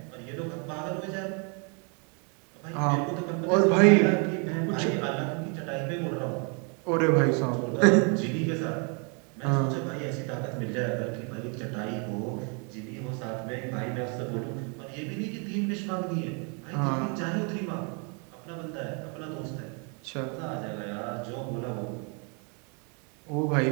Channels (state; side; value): quieter; left; 36.4 dB